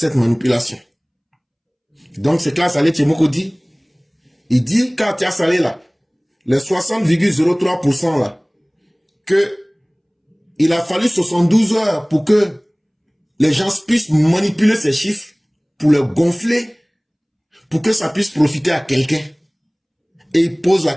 manipulation. Donc c'est que Assalé Tchemoko dit, il dit qu'à Tia Salé là, les 60,03% là, que il a fallu 72 heures pour que les gens puissent manipuler ces chiffres, pour les gonfler, pour que ça puisse profiter à quelqu'un. Et il pose la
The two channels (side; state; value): both; identical; correlation 1.00